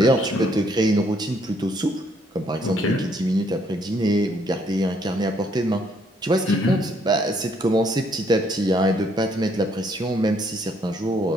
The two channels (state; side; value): normal; both; correlation 0.68